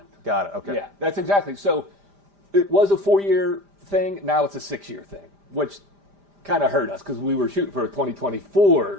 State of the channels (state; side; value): late; left; 5.0 ms